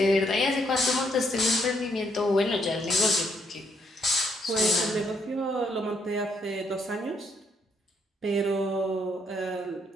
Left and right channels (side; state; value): both; normal; correlation 0.73